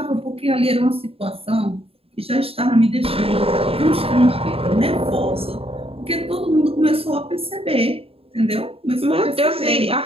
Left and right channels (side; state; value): left; late; 0.28 ms